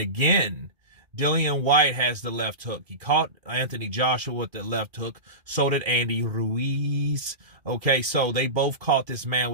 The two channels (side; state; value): left; late; 2.4 ms